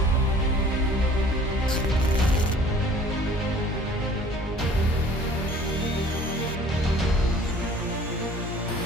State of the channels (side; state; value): both; normal; correlation 0.51